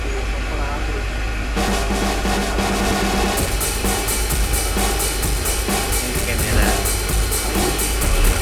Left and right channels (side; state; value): both; identical; correlation 1.00